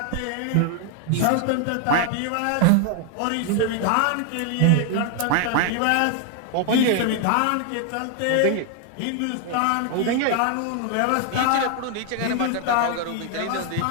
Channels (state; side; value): different; both; correlation 0.00